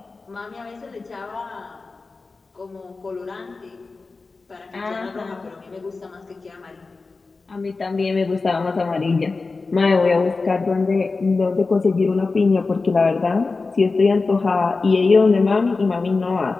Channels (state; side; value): quieter; right; 3.9 dB